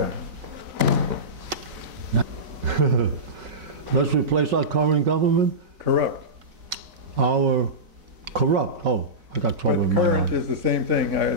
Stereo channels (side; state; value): left; late; 4.0 ms